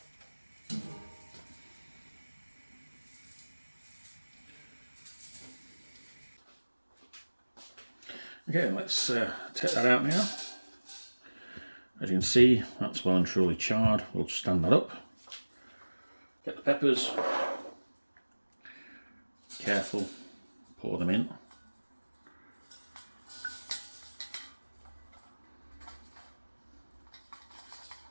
Okay, let's take that out now. As you can see, that's well and truly charred. We'll stand that up. Get the peppers. Careful, pour them in.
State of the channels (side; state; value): both; inverted; correlation -1.00